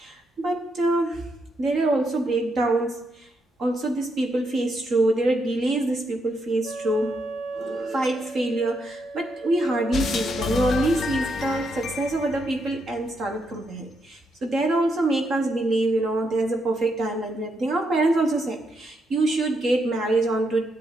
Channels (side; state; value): both; normal; correlation 0.79